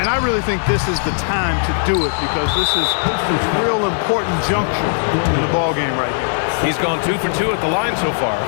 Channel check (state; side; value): silent; right; 63 dB below the other